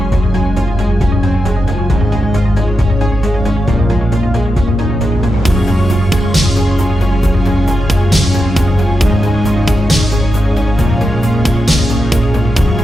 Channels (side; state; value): both; normal; correlation 0.88